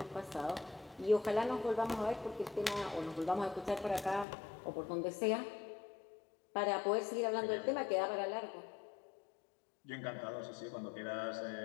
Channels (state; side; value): drops out; right; at 4.2 s